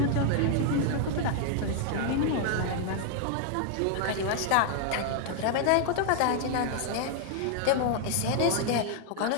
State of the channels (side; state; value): both; different; correlation 0.00